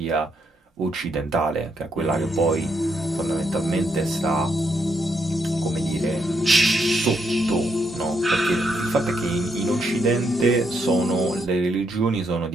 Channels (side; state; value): both; normal; correlation 0.77